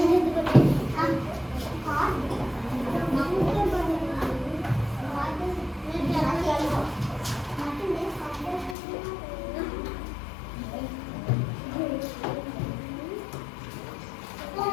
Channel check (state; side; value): drops out; right; at 8.8 s